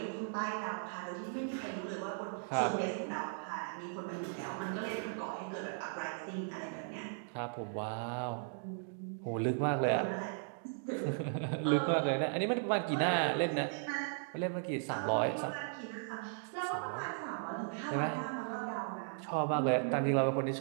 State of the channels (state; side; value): silent; left; digital silence